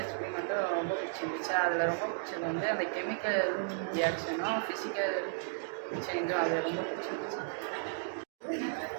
எக்ஸ்பெரிமெண்ட்டும் ரொம்ப பிடிச்சிருந்துச்சு. அதில் ரொம்ப பிடிச்சது வந்து அந்த கெமிக்கல் ரியாக்ஷனும் ஃபிசிக்கல் சேஞ்சும் அதில் ரொம்ப பிடிச்சிருந்துச்சு.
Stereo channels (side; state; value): left; silent; digital silence